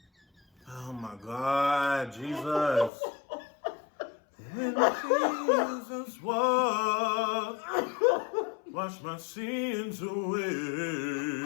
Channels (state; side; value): drops out; right; at 2.9 s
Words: Oh my God, Jesus. When Jesus walked, wash my sins away.